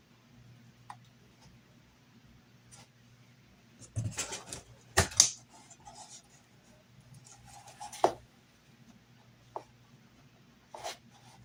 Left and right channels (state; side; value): identical; both; correlation 1.00